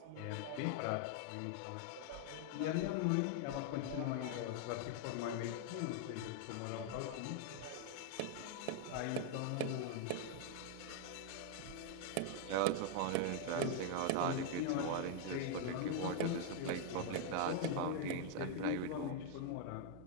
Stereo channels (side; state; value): both; different; correlation 0.00